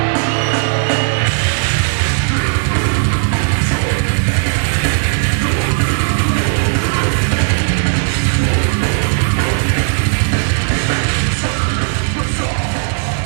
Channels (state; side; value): silent; left; 70 dB below the other